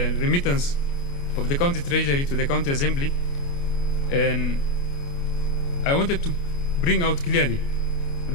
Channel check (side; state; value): right; late; 29 ms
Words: remittance of the county treasury to the county assembly, and I wanted to bring out clearly